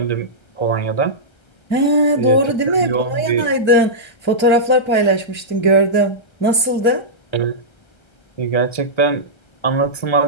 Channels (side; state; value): right; late; 1.3 ms